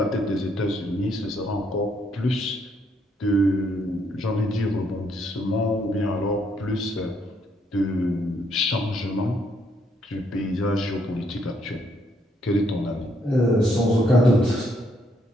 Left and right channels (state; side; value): normal; both; correlation 0.72